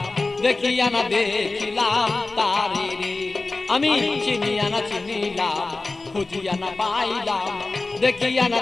দেখিয়া না দেখিলাম তারে রে। আমি চিনিয়া না চিনিলাম, খুঁজিয়া না পাইলাম, দেখিয়া না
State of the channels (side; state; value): right; quieter; 3.4 dB